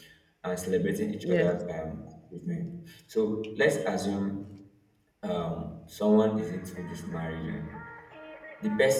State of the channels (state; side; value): identical; both; correlation 1.00